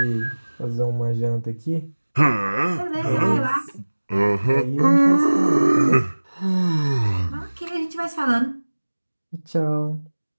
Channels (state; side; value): inverted; both; correlation -1.00